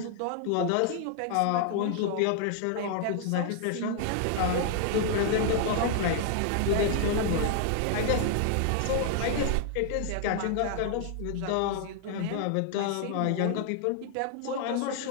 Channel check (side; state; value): both; different; correlation 0.00